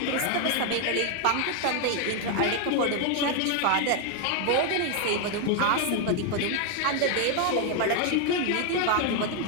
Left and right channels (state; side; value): different; both; correlation 0.00